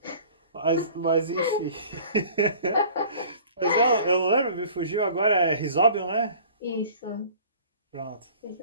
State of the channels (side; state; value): both; inverted; correlation -0.47